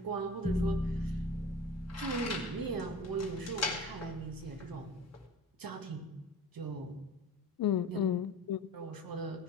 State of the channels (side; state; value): both; normal; correlation 0.37